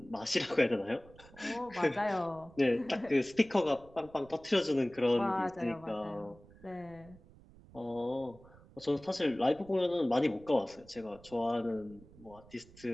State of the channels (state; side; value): noise; right; rumble, 23 dB below the sound